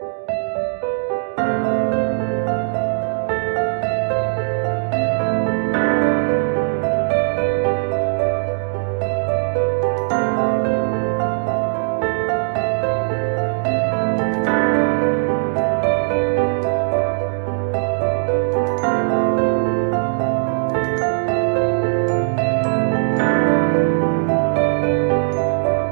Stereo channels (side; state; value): left; silent; digital silence